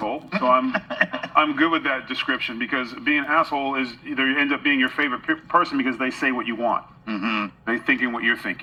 So I'm good with that description, because being an asshole is either you end up being your favorite person because they say what you want. They're thinking what you're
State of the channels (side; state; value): both; identical; correlation 1.00